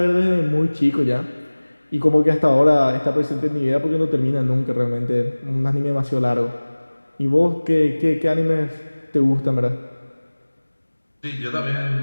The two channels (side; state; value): both; inverted; correlation -1.00